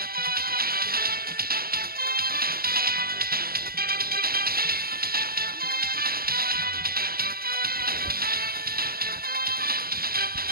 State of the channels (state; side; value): late; left; 0.44 ms